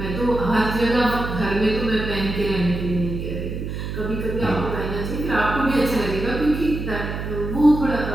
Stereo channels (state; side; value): noise; right; hum, 5 dB below the sound